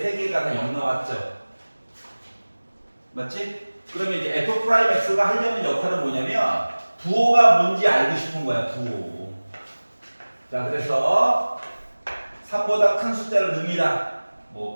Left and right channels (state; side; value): inverted; both; correlation -1.00